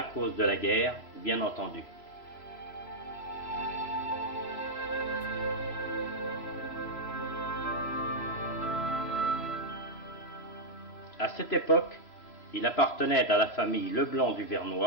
cause de la guerre, bien entendu. À cette époque, il appartenait à la famille Leblanc du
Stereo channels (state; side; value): late; right; 6.8 ms